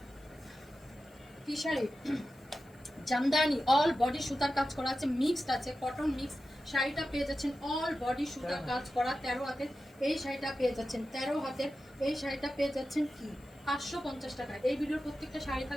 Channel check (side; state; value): left; noise; hiss, 30 dB below the sound